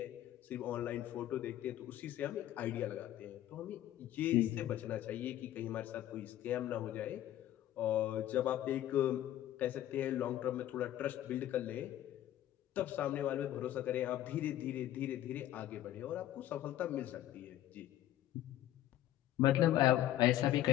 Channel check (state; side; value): quieter; right; 13.0 dB